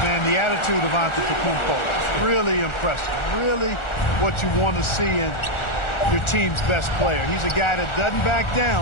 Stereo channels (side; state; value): right; late; 1.4 ms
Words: Man, the attitude of Antetokounmpo, really impressive. Really what you want to see in your team's best player. He's a guy that doesn't back